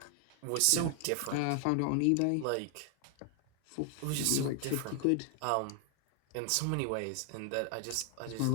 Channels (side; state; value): both; different; correlation 0.00